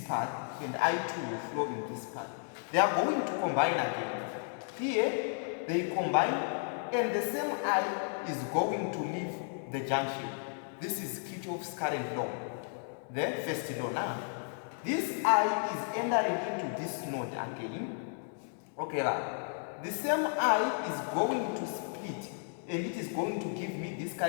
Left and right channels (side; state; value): right; silent; 55 dB below the other